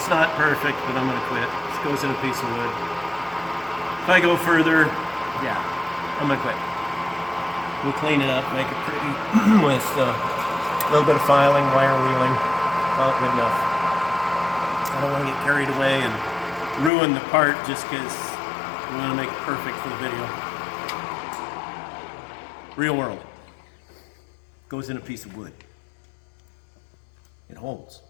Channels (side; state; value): right; drops out; at 16.9 s